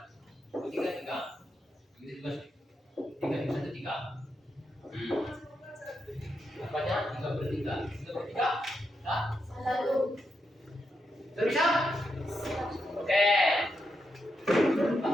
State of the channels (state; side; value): normal; both; correlation 0.84